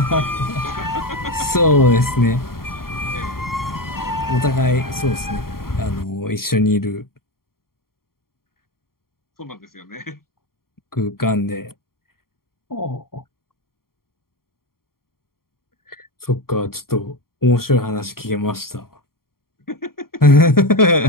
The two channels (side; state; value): right; late; 0.93 ms